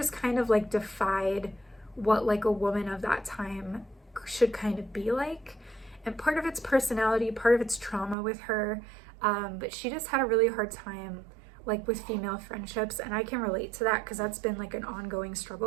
kind of like defied what like a woman of that time should kind of be like. And part of it's personality, part of it's trauma with her, but she just had a really hard time like with female friendships, and I can relate to that because that's been like an ongoing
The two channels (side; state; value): left; drops out; at 8.2 s